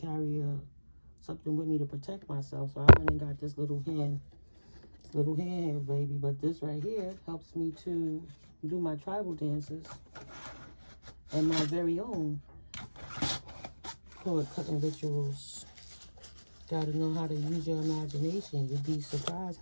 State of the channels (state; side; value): inverted; both; correlation -1.00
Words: something with me to protect myself. So I went and got this little hand here, baby. But this right here helps me to do my tribal dances and my very own cord cutting rituals. Gotta know how to use your imagination. You'd be surprised